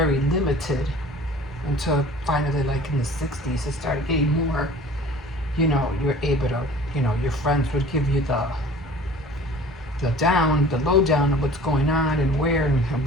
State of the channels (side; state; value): both; normal; correlation 0.46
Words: limited until finally, like in the 60s, it started getting more, you're able to, your friends would give you the lowdown of what's going on and where